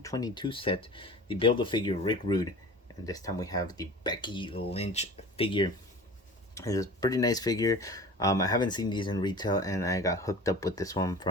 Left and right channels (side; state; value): both; normal; correlation 0.39